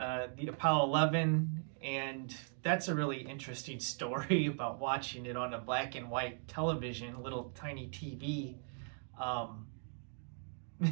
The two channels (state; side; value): silent; left; 52 dB below the other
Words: Apollo 11, and that's a really interesting story about watching it on a black and white television, a little tiny TV,